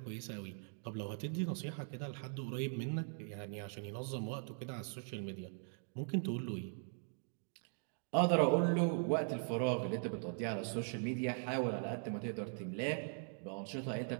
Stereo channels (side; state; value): left; silent; 51 dB below the other